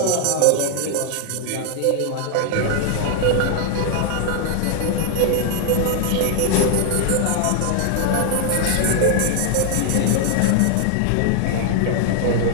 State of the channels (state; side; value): different; both; correlation 0.00